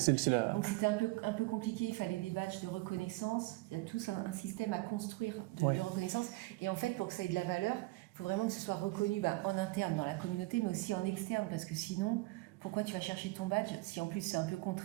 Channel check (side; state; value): left; quieter; 22.2 dB